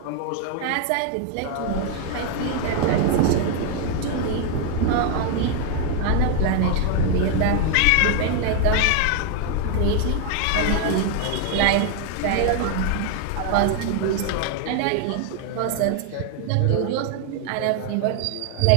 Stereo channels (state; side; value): different; both; correlation 0.00